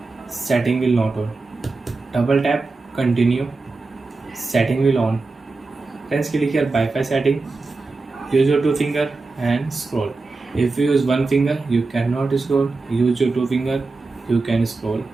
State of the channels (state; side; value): quieter; left; 3.7 dB